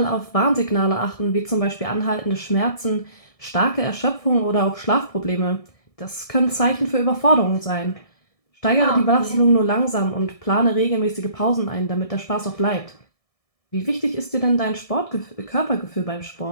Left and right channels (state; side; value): late; right; 1.6 ms